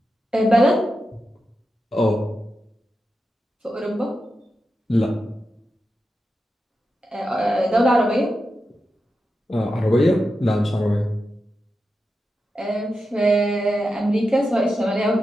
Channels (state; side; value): normal; both; correlation 0.89